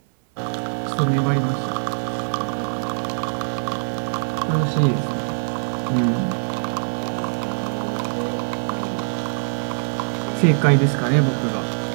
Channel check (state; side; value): silent; left; 61 dB below the other